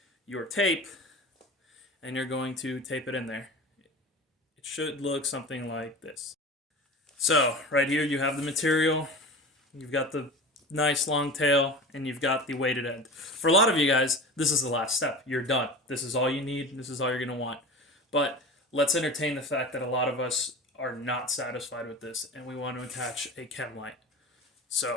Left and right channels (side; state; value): both; normal; correlation 0.33